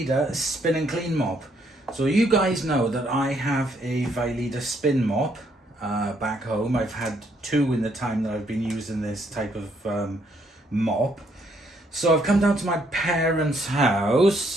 spin and clean mop. So you guys know that I have a Vileda spin mop back home. I've had two in the time that I've been using this type of mop. So I've come down to my parents'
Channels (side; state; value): both; normal; correlation 0.70